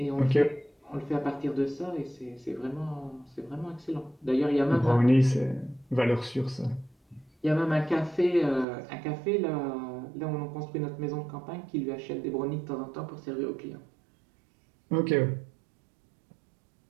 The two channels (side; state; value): left; drops out; at 8.7 s